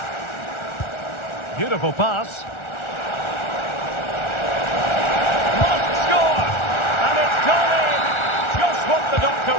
Beautiful pass. Must score! And it's gone in! Just what the doctor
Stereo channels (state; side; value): late; right; 1.4 ms